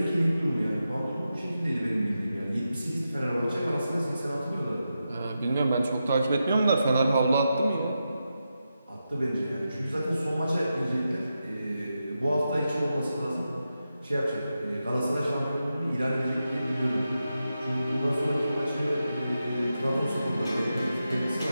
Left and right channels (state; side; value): inverted; both; correlation -0.89